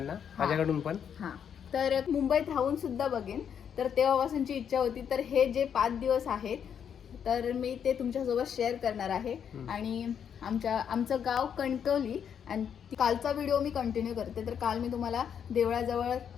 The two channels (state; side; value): quieter; right; 8.1 dB